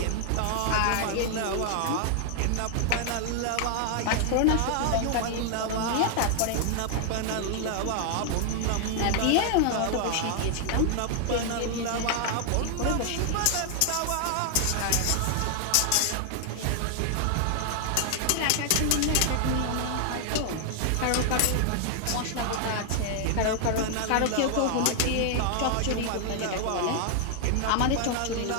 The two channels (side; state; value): both; different; correlation 0.00